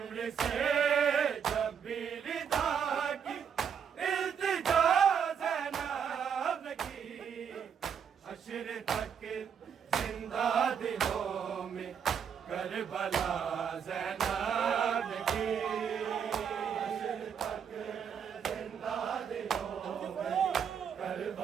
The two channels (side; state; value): left; quieter; 7.5 dB